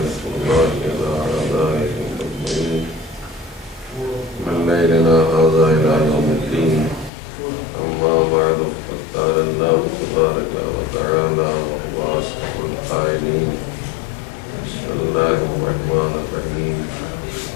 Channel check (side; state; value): right; drops out; at 7.1 s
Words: الله على أعدائهم أجمعين من ليلنا هذا إلى يوم الدين أما بعد فقد قال الله تبارك وتعالى وهو أصدق القائلين بسم الله الرحمن الرحيم